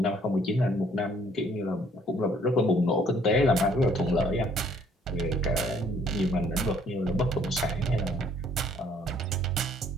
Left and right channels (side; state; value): both; normal; correlation 0.62